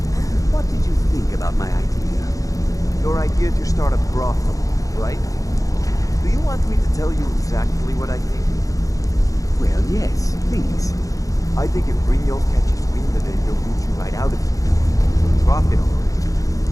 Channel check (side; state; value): right; late; 0.17 ms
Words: What did you think about my idea? Your idea to start a brothel, right? Do you want me to tell you exactly what I think? Well, yes, please. I think if Brynjolf catches wind of it, he'll boot you right out of here. He'll profit on it.